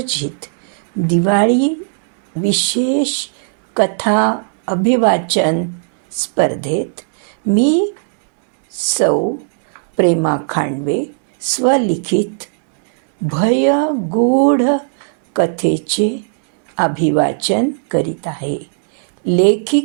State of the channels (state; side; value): silent; left; 63 dB below the other